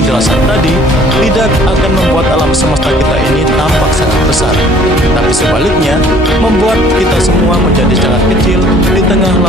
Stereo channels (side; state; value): both; normal; correlation 0.55